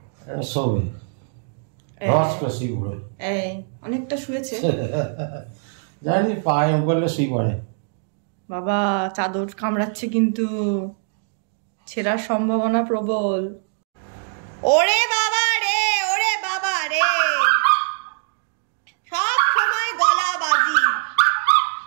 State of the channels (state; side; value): silent; left; digital silence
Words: শোবে। এই অনেকটা শুয়েছে, জানি পায়ে উপরে শুয়ে পড়ে। বাবা চাদর কামড়াচ্ছে কিন্তু, ছেঁড়ার সম্ভাবনা প্রবল। ওরে বাবা রে, ওরে বাবা, রে, সব সময় গলাবাজি,